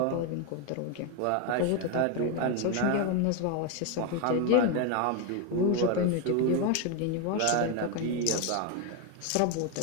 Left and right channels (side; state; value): both; different; correlation 0.02